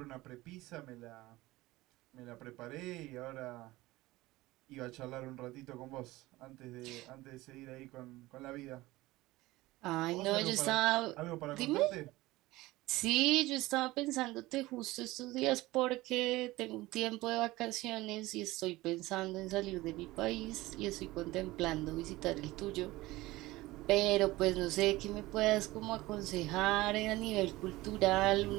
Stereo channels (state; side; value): quieter; left; 19.0 dB